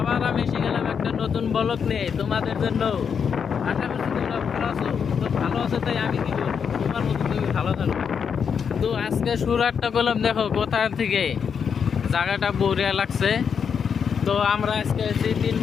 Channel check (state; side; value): quieter; right; 6.8 dB